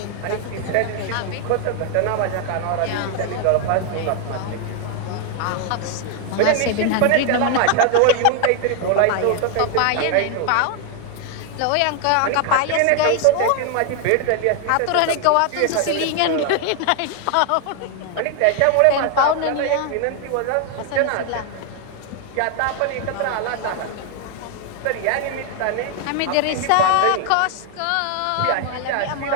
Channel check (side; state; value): both; different; correlation 0.00